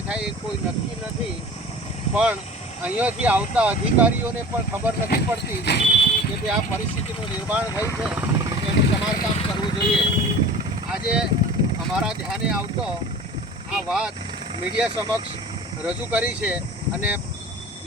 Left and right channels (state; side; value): normal; both; correlation 0.40